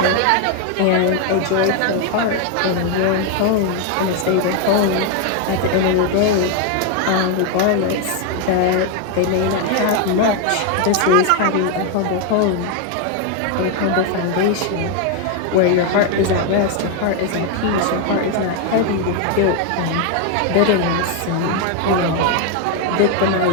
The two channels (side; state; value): both; different; correlation 0.01